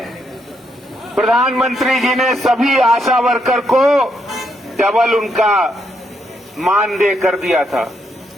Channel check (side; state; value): both; normal; correlation 0.77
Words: प्रधानमंत्री जी ने सभी आशा वर्कर को डबल उनका मानदेय कर दिया था।